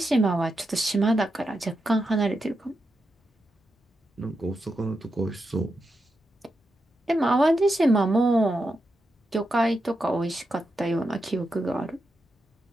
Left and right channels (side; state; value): both; normal; correlation 0.87